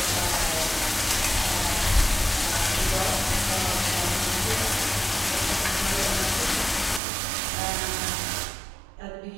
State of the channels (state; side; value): drops out; left; at 7.0 s